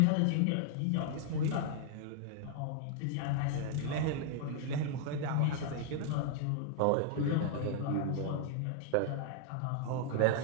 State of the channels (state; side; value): different; both; correlation 0.00